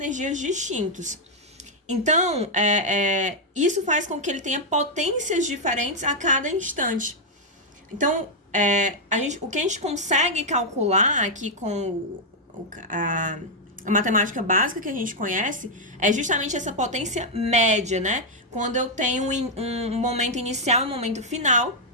distintos. Então, isso faz com que ele tenha potências diferentes a cada instante. Então, o que a gente consegue calcular aqui com a matemática básica que a gente conhece é justamente essa potência média, né? Quando eu tenho um momento inicial e um momento final,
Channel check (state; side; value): normal; both; correlation -0.01